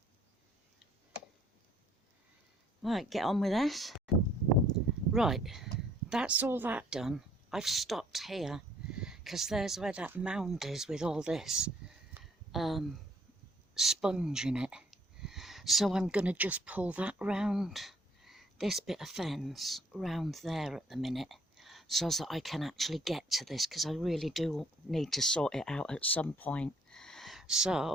Right, get on with this. Right, that's all that done. I've stopped here because there's where that mound is with all this sponge in it. So I'm going to just pull that round, this bit of fence round there at the minute, so that I can actually get to this, because I really do need to sort it out at some point.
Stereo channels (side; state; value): both; normal; correlation 0.63